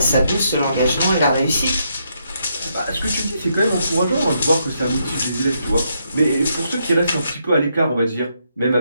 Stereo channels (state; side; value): inverted; both; correlation -0.78